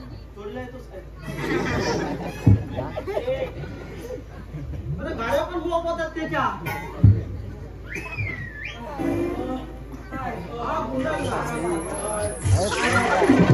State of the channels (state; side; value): identical; both; correlation 1.00